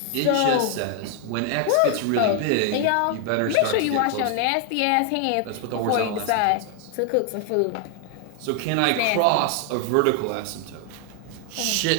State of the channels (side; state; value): both; different; correlation 0.00